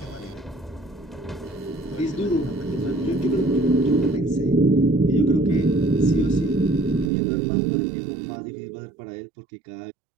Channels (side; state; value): left; drops out; at 7.1 s